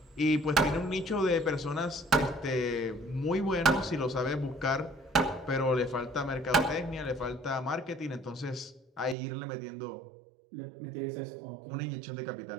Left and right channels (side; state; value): left; drops out; at 9.2 s